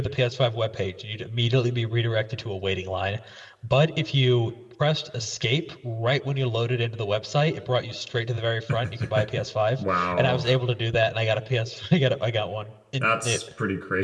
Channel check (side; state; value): both; identical; correlation 1.00